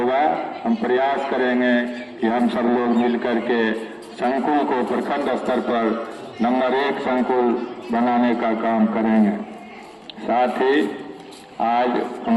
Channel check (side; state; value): both; identical; correlation 1.00